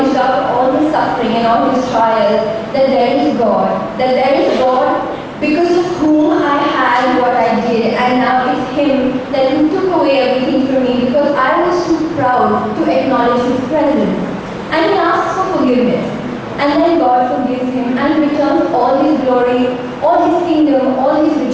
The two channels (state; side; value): identical; both; correlation 1.00